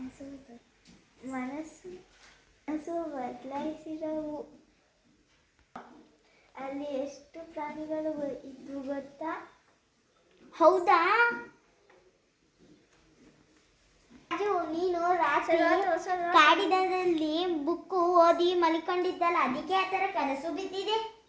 ಬದಲಾಯಿಸಿದವು. ಅಲ್ಲಿ ಎಷ್ಟು ಪ್ರಾಣಿಗಳು ಇದ್ದು ಗೊತ್ತಾ? ಹೌದಾ? ರಾಜು, ನೀನು ರಾತ್ರಿ ಕಾಡಿನಲ್ಲಿ ಬುಕ್ಕು ಓದಿ ಮಲಿಕೊಂಡಿದ್ದಲ್ಲ, ಅದಕ್ಕೆ ಆ ಥರ ಕನಸು ಬಿದ್ದಿದೆ.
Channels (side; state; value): both; identical; correlation 1.00